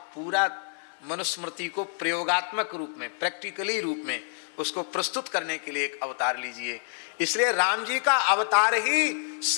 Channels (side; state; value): right; silent; 60 dB below the other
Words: पूरा मनुस्मृति को प्रयोगात्मक रूप में, प्रैक्टिकली रूप में उसको प्रस्तुत करने के लिए एक अवतार लीजिए। इसलिए राम जी का अवतार ही